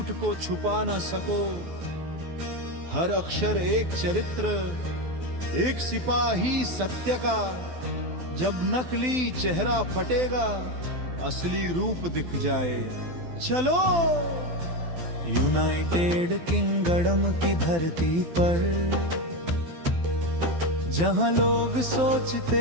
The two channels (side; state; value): left; late; 12 ms